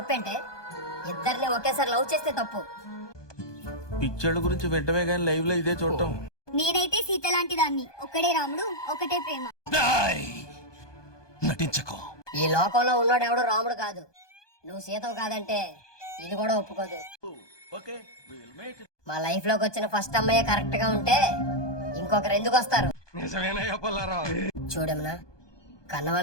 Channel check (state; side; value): late; right; 1.2 ms